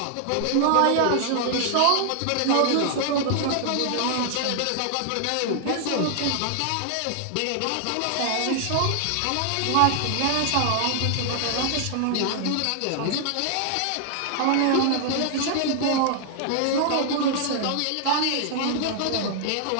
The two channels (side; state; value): both; different; correlation 0.00